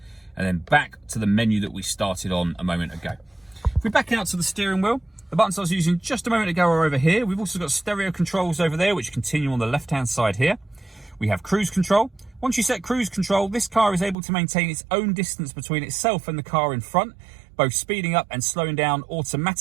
and then back to the menu that we started on a moment ago. If we back out to the steering wheel, the buttons I was using just a moment ago are over here. We've also got stereo controls over there, which continue on the left-hand side here. We have cruise control. Once you set cruise control, this car is able to maintain its own distance between itself and the car in front, both speeding up and slowing down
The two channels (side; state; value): left; drops out; at 14.2 s